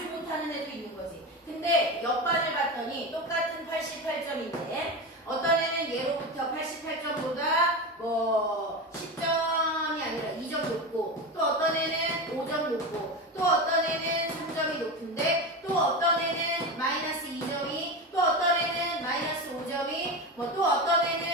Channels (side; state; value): both; normal; correlation 0.22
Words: 못하는 애도 있는 거지. 근데 옆반을 봤더니 똑같은 88점인데 어떤 애는 예로부터 88점보다 뭐 10점이 아니라 2점 높고 또 어떤 애는 5점 높고 또 어떤 애는 3점이 높은데 또 어떤 애는 마이너스 2점이 또 어떤 애는 마이너스 5점이 뭐 또 어떤